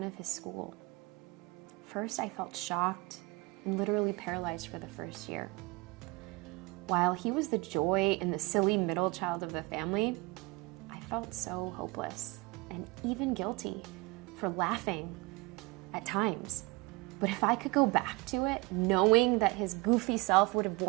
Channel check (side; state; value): left; quieter; 24.0 dB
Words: of his school. First, I felt shocked and literally paralyzed for the first year. While he was the joy and the silly middle child of the family, I felt so hopeless and even guilty for laughing at times. But if I could go back to it, knowing that his goofy self would have